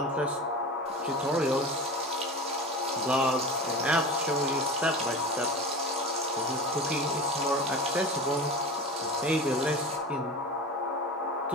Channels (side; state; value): both; normal; correlation 0.31